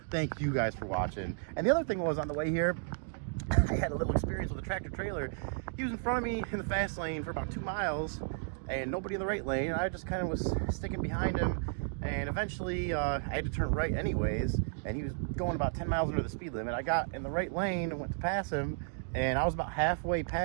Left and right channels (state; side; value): silent; left; digital silence